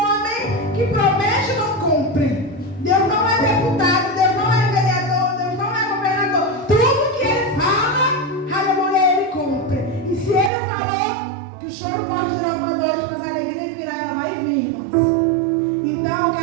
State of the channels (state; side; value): drops out; left; at 10.5 s